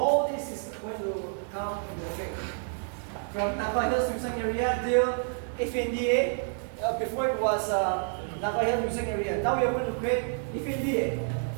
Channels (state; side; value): silent; left; 59 dB below the other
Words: this is going to come in the effect. From Naga Hills Museum area till FNDA, before it was Naga Hills Museum area. Now we are going to create FNDA.